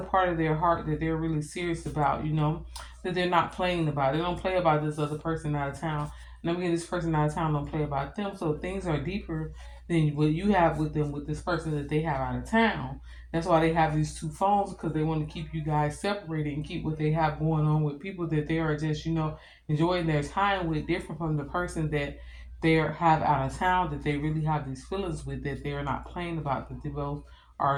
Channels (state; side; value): identical; both; correlation 1.00